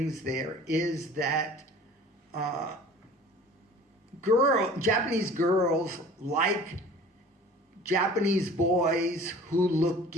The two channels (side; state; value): both; normal; correlation 0.45